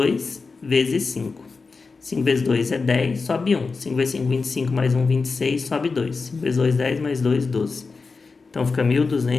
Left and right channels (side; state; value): right; quieter; 4.4 dB